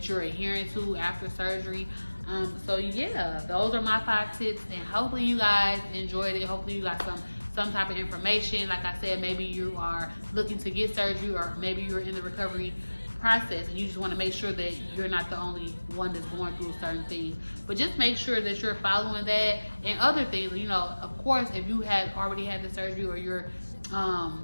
you're adhering to after surgery. So yeah, those are my 5 tips, and hopefully you guys enjoyed it. Hopefully you got some type of information. Like I said, maybe you are looking to get surgery, or maybe you're in the recovery process and you just want to make sure that you're not the only one that's going through certain things. But just make sure that you're following that and other things. Of course, if you have already had the surgery, or you're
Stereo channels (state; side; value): inverted; both; correlation -1.00